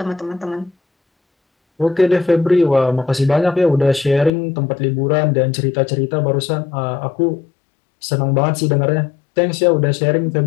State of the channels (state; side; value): drops out; right; at 4.3 s